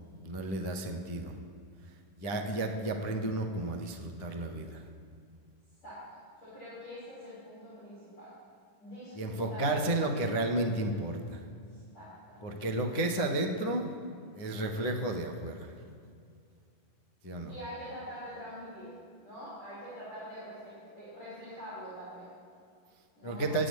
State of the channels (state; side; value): late; right; 9.9 ms